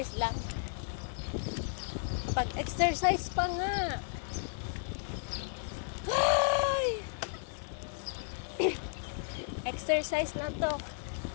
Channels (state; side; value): silent; right; 55 dB below the other